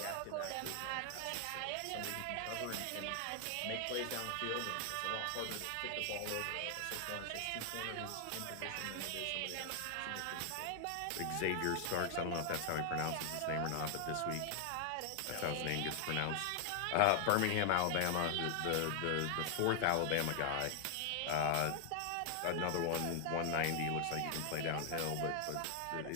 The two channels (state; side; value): different; both; correlation 0.00